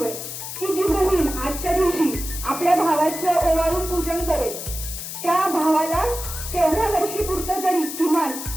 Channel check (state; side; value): noise; left; hiss, 8 dB below the sound